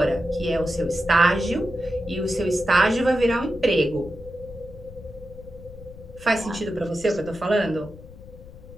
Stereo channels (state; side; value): noise; left; rumble, 17 dB below the sound